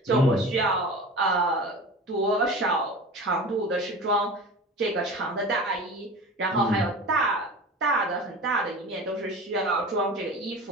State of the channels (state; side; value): normal; both; correlation 0.34